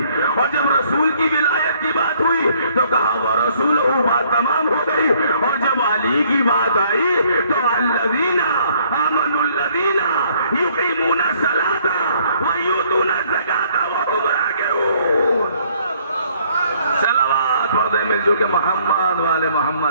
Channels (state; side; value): inverted; both; correlation -0.64